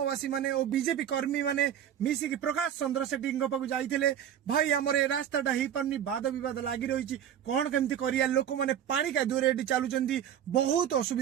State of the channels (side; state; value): left; quieter; 9.7 dB